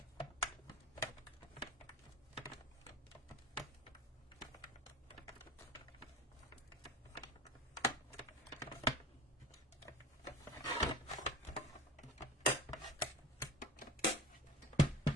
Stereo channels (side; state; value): both; normal; correlation 0.39